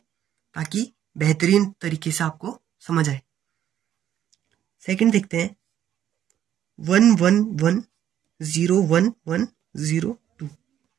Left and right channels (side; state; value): left; quieter; 10.7 dB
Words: ताकि बेहतरीन तरीके से आपको समझ आए। सेकंड देखते हैं, 1110110